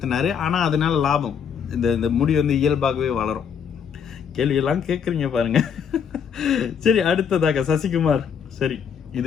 ஆனால் அதனால லாபம் இந்த முடி இயல்பாகவே வளரும். கேள்வியெல்லாம் கேட்குறீங்க பாருங்க. சரி, அடுத்ததாக சசிகுமார். சரி,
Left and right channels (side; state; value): right; quieter; 7.3 dB